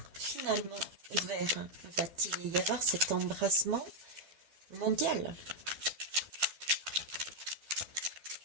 finalement ouvert? Va-t-il y avoir cet embrassement mondial?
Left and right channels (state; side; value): late; left; 12 ms